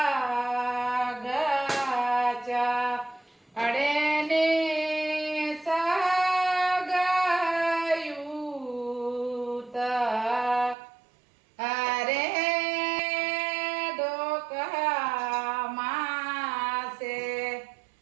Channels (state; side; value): drops out; left; at 10.8 s